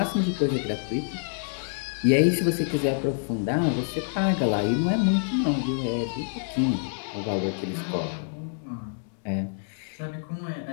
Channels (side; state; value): right; silent; 60 dB below the other